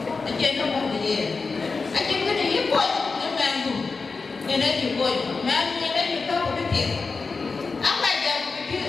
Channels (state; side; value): quieter; right; 4.4 dB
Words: anh chơi nó không gì anh chơi cái này quậy nó mang đủ người đấy chịu quậy mà người đấy chịu cao một cái tiền áo bài giờ